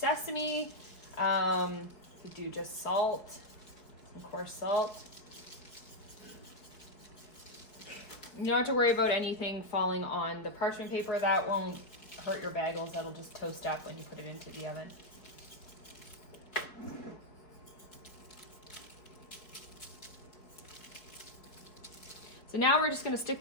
you do just salt, some coarse salt. You don't have to worry about anything falling on the parchment paper. That won't hurt your bagels. That'll just toast up when you put it into the oven. So now we're just gonna stick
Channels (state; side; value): late; right; 4.7 ms